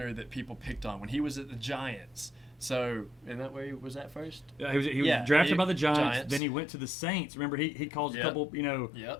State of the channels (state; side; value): drops out; right; at 6.4 s